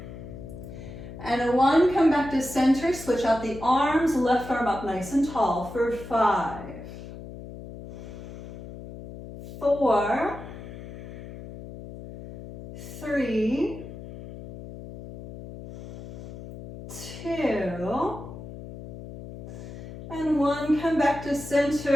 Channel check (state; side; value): noise; left; hum, 12 dB below the sound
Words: and a 1. Come back to center. Switch out the arms. Left arm up nice and tall for 5, 4, 3, 2, and 1. Come back to